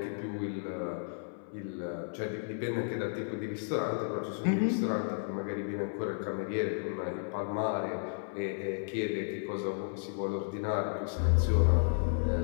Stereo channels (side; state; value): right; silent; 56 dB below the other